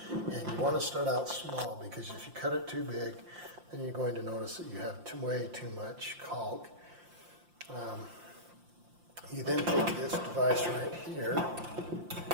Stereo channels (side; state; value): left; late; 5.7 ms